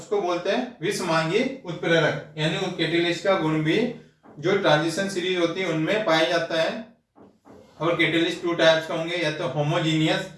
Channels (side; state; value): both; identical; correlation 1.00